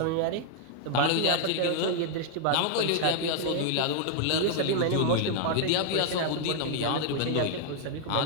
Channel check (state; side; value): different; both; correlation 0.00